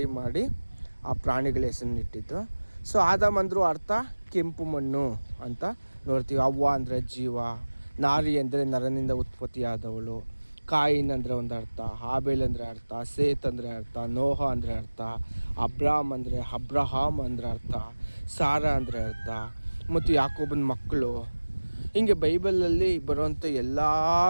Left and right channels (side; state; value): both; inverted; correlation -1.00